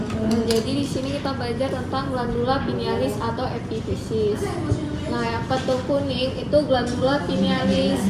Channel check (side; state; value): both; identical; correlation 1.00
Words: Jadi di sini kita belajar tentang glandula pinealis atau epifisis. Nah, yang pentul kuning itu glandula pinealis